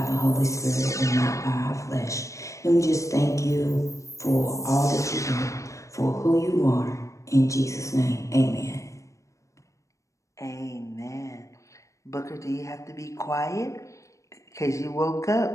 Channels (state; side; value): late; right; 0.15 ms